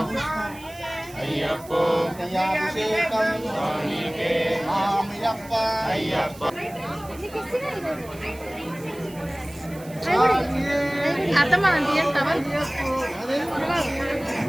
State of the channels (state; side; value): noise; right; hiss, 20 dB below the sound